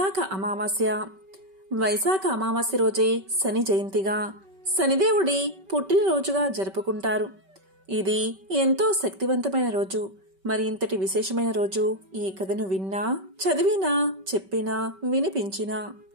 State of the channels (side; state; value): left; late; 5.2 ms